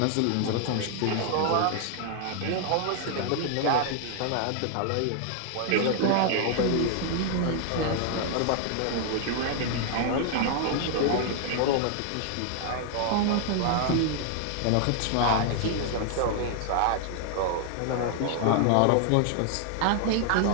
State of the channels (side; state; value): both; different; correlation 0.00